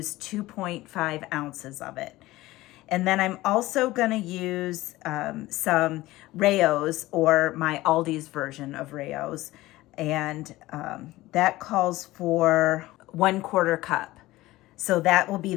2.5 ounces of it. And then I'm also gonna use some Rayo's, or my Aldi's version of Rayo's, and that calls for 1/4 cup. So that will be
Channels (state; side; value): quieter; right; 17.9 dB